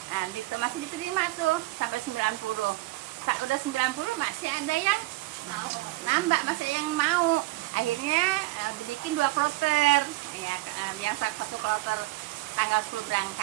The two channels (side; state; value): left; quieter; 20.3 dB